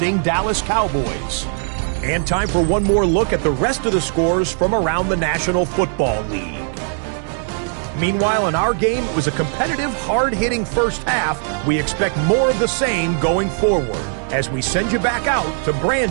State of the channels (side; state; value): left; silent; 60 dB below the other